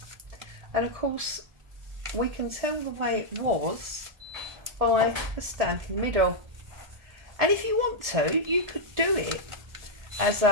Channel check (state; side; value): late; left; 1.7 ms